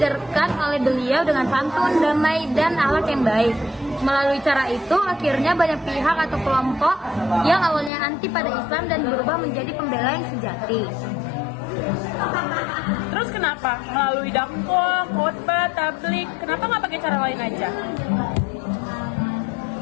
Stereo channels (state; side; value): drops out; right; at 7.9 s